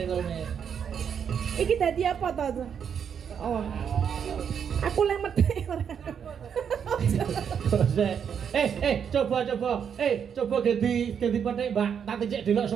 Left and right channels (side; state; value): left; quieter; 7.6 dB